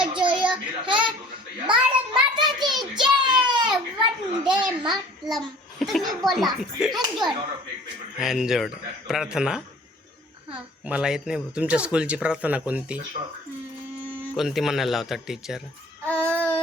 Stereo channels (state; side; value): normal; both; correlation 0.49